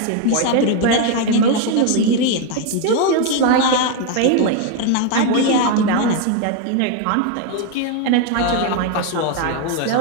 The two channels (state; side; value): different; both; correlation 0.01